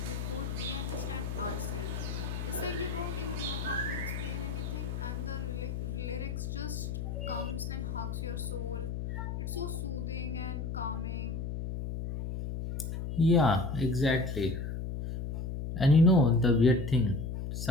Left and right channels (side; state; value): left; noise; hum, 4 dB below the sound